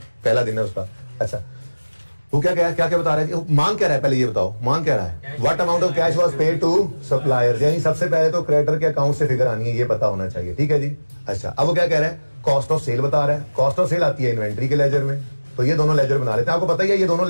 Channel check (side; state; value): both; inverted; correlation -1.00